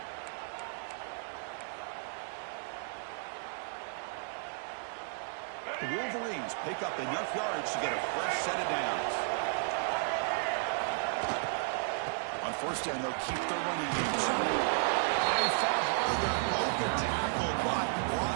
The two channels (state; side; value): silent; left; digital silence